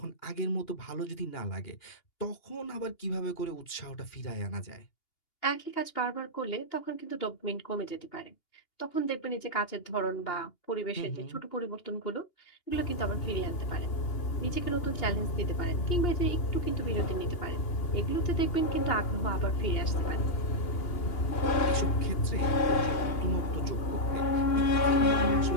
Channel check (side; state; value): right; late; 2.8 ms